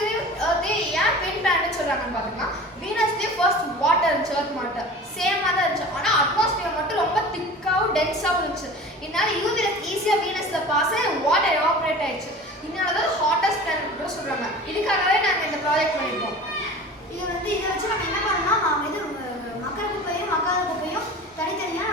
ஏன் ட்வின் பிளானட்னு சொல்கிறாங்கன்னு பார்த்தோம்னா வீனஸ்லேயே ஃபர்ஸ்ட் வாட்டர் இருந்துச்சு, எர்த் வாட்டர் சேமாக தான் இருந்துச்சு. ஆனால் அட்மாஸ்பியர் மட்டும் ரொம்ப திக்காகவும் டென்ஸாகவும் இருந்துச்சு. இதனால யூவி ரேஸ் ஈஸியாக வீனஸில் பாஸ் ஆகி வாட்டர் எவாபரேட் ஆயிடுச்சு. இதனால தான் ஹாட்டஸ்ட் பிளானட் கூட சொல்கிறாங்க. இதுக்காகவே நாங்கள் இந்த ப்ராஜெக்ட் பண்ணியிருக்கோம். இதை வச்சு நம்ம என்ன பண்ணோம்னா நாம் இது மக்கர குப்பையும் மக்காத குப்பையும் தனித்தனியாக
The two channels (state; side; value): normal; both; correlation 0.38